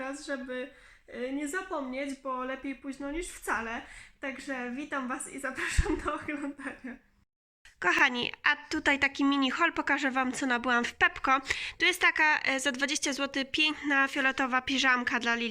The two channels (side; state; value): both; identical; correlation 1.00